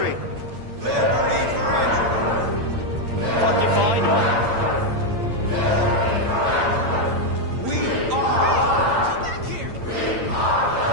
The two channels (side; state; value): left; late; 8.8 ms